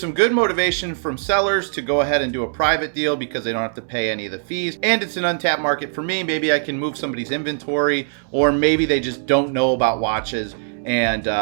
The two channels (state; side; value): silent; left; digital silence